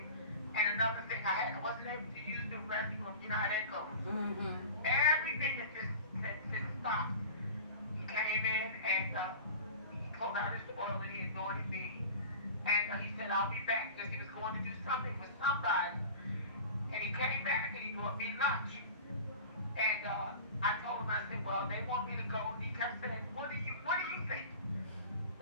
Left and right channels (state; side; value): inverted; both; correlation -0.37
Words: And another thing, I wasn't able to use the restroom. You know how that goes. Everything that just stopped. He came in and he pulled out his oil and he anointed me. And he said, I'll be back because he was going to do something with somebody. And he came back and he brought me lunch. And I told him, I said, well, they want me to go. And he kept saying, what do you think?